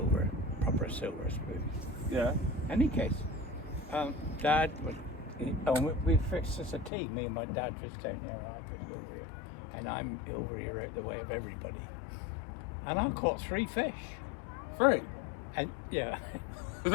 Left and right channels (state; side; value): drops out; right; at 6.9 s